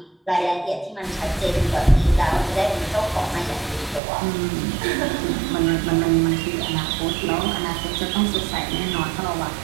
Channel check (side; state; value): left; drops out; at 4.0 s